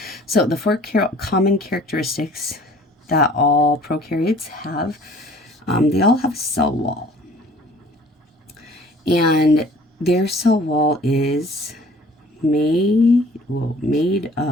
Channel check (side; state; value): both; normal; correlation 0.52